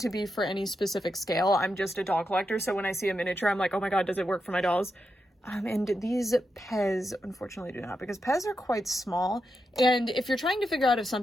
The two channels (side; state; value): both; normal; correlation 0.86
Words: to be for any specific scale. I'm just a doll collector, so when I see a miniature, I'm like, oh my god, does it work for my dolls? And these Pez, unfortunately, do not, because Pez are quite small. And if you're trying to figure out if